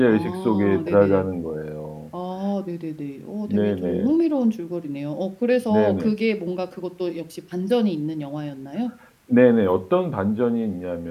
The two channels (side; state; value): both; identical; correlation 1.00